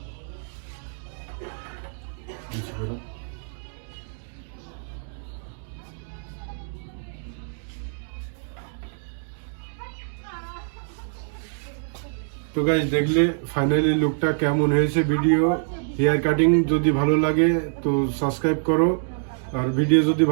বুঝতে পারো? তো গাইস দেখলে ফাইনালি লুকটা কেমন হয়েছে। ভিডিও হেয়ার কাটিং যদি ভালো লাগে তো সাবস্ক্রাইব করো, আর ভিডিও যদি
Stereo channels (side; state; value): left; silent; digital silence